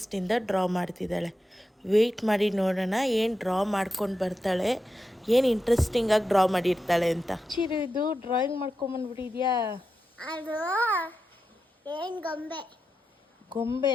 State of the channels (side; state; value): both; normal; correlation 0.89